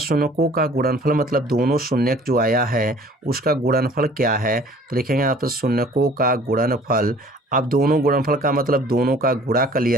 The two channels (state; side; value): normal; both; correlation 0.51